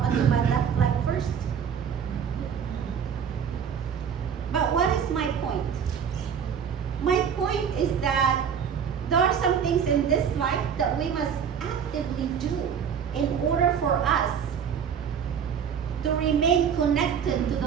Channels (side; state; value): left; quieter; 7.5 dB